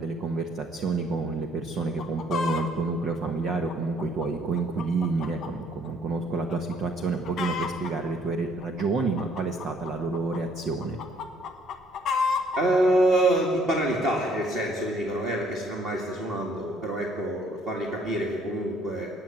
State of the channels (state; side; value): normal; both; correlation 0.63